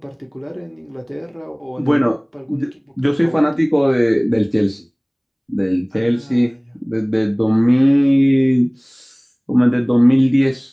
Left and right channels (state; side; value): identical; both; correlation 1.00